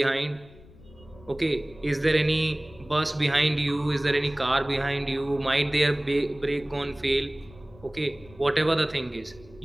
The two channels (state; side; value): noise; left; rumble, 23 dB below the sound